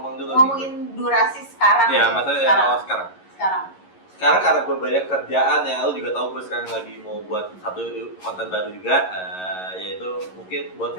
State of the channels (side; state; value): right; late; 11 ms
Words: dulu? Ngomongin durasi sekarang. Ya, deh. maksudnya sekarang. sekarang. Sekarang karena gue banyak kerjaan yang lu juga tahu, gue sekarang lagi mau buat satu konten baru juga, yaitu mungkin buat